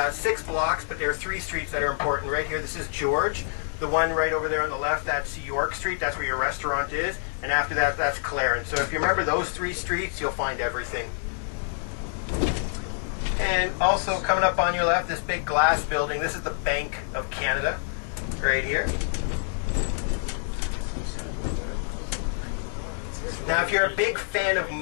6 blocks, but there are 3 streets that are important. Right here, this is George. The one right over there on the left, that's York Street. That's where your restaurant is. And after that, that's Clarence. So if you remember those 3 streets, you'll find everything. And also coming up on your left, this big glass building. This is the Bank of Canada right here. Now, if you're a big fan of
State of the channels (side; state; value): right; silent; 60 dB below the other